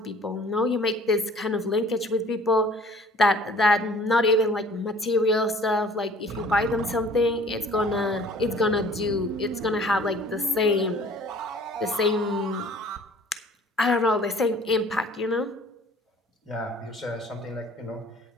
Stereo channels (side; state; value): both; normal; correlation 0.52